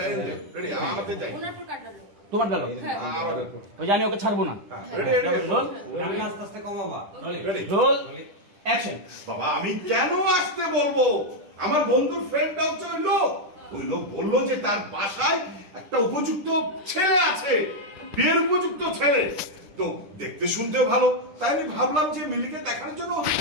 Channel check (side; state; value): left; late; 10 ms